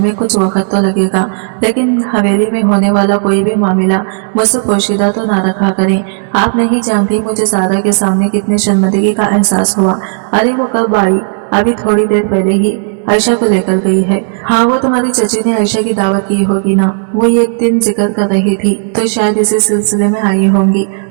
कुछ वक्त तो लगेगा, लेकिन हवेली में होने वाला कोई भी मामला मुझसे पोशीदा तो ना रखा करें। आप नहीं जानती मुझे सारा के सामने कितनी शर्मिंदगी का एहसास हुआ। अरे वो कब आई? अभी थोड़ी देर पहले ही आयशा को लेकर गई है। हाँ, वो तुम्हारी चची ने आयशा की दावत की होगी ना, वो एक दिन जिक्र कर रही थी, तो शायद इसी सिलसिले में आई होंगी।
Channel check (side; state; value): left; silent; digital silence